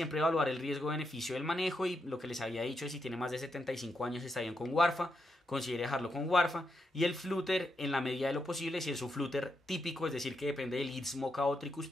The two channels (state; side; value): normal; both; correlation 0.83